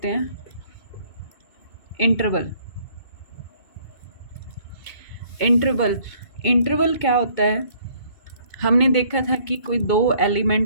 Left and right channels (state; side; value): late; right; 2.2 ms